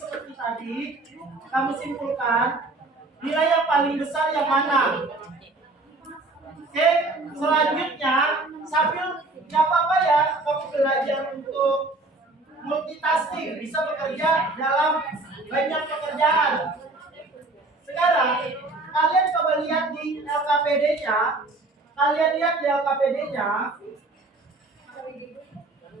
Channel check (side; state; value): left; quieter; 3.1 dB